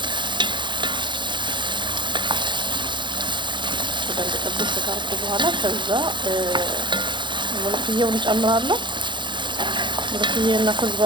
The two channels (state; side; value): late; left; 0.23 ms